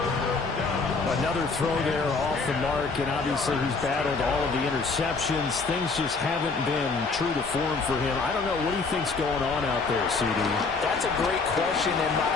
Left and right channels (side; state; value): right; quieter; 4.3 dB